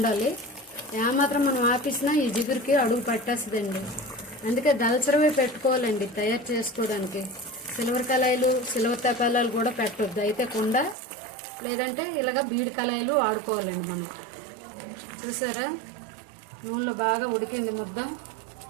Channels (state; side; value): drops out; left; at 11.0 s